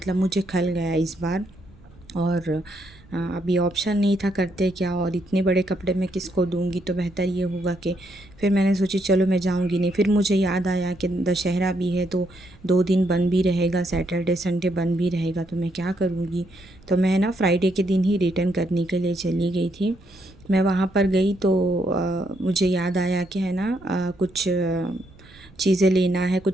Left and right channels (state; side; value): noise; right; rumble, 25 dB below the sound